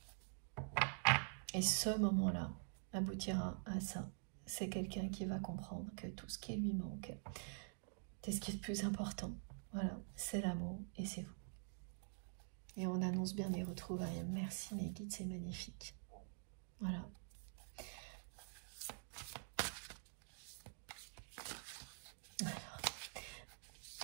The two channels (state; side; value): silent; left; digital silence